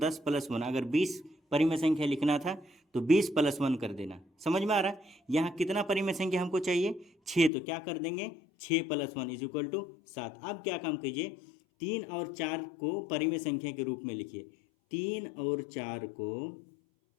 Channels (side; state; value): right; drops out; at 7.5 s